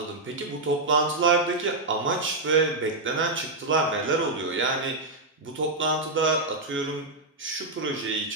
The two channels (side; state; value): left; quieter; 3.0 dB